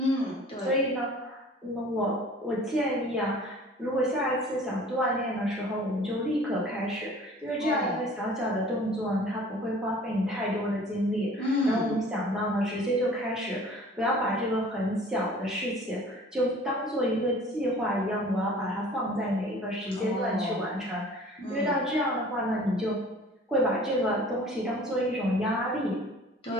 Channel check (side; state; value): both; normal; correlation 0.48